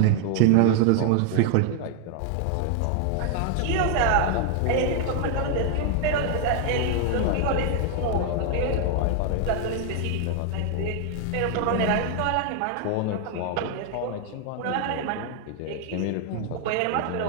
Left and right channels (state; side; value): different; both; correlation 0.00